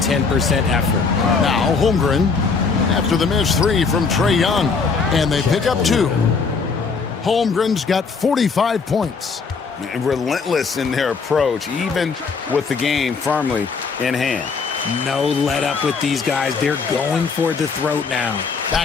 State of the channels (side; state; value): right; quieter; 5.0 dB